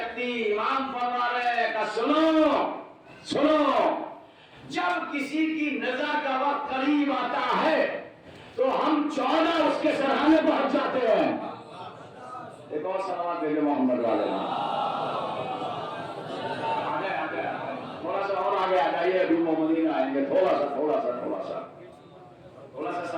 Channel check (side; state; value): both; identical; correlation 1.00